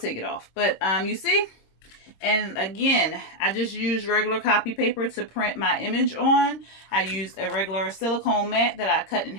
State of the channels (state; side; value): late; right; 26 ms